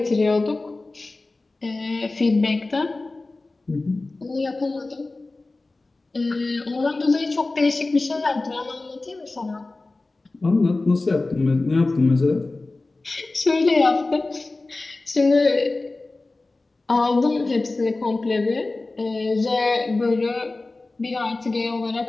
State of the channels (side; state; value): right; quieter; 3.2 dB